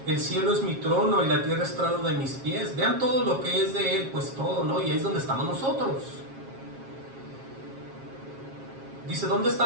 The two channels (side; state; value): left; late; 7.4 ms